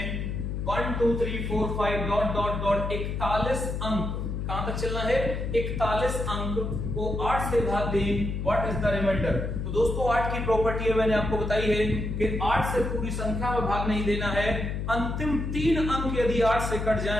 1 2 3 4 5 डॉट डॉट डॉट 41 अंक, कहां तक चलना है 41 अंक को 8 से भाग दें, व्हाट इज द रिमाइंडर। तो दोस्तों 8 की प्रॉपर्टी है मैंने आपको बताई है कि 8 से पूरी संख्या में भाग नहीं देना है। अंतिम 3 अंक यदि 8 से कट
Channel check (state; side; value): noise; left; hum, 3 dB below the sound